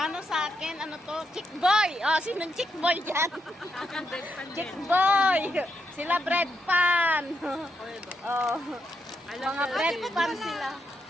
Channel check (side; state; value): both; normal; correlation 0.81